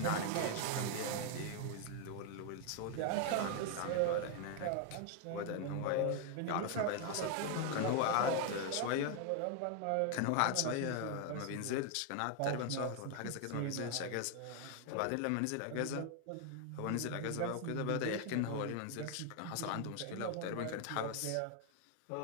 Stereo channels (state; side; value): different; both; correlation 0.01